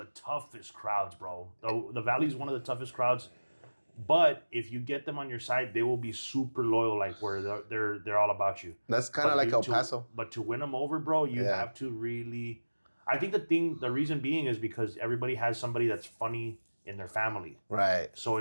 toughest crowds, bro. The Valley's one of the toughest crowds. But if you get them on your side, they will be super loyal, like where they're all about you. That's kind of like El Paso. But to win them over, bro, you have to really. I think the reason being is because everybody has somebody that's funny in their family. Right. So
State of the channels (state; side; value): inverted; both; correlation -1.00